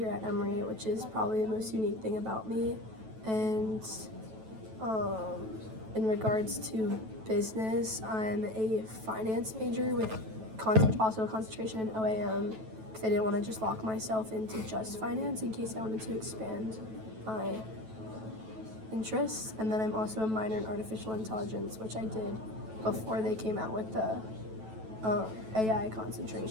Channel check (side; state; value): left; late; 9.2 ms